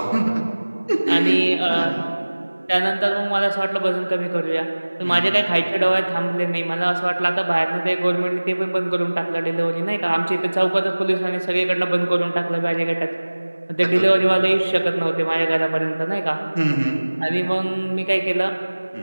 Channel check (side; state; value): both; inverted; correlation -1.00